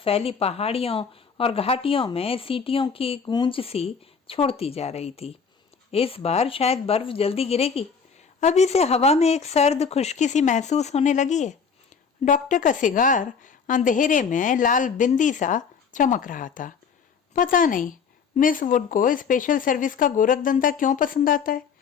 पहाड़ियों और घाटियों में सीटियों की गूंज सी छोड़ती जा रही थी। इस बार शायद बर्फ जल्दी गिरेगी। अभी से हवा में एक सर्द खुश्की सी महसूस होने लगी है। डॉक्टर का सिगार अंधेरे में लाल बिंदी सा चमक रहा था। पता नहीं मिस वुड को स्पेशल सर्विस का गोरखधंधा क्यों पसंद आता है।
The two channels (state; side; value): quieter; right; 6.1 dB